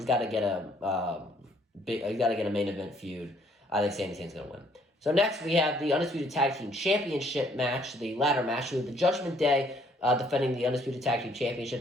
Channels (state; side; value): normal; both; correlation 0.64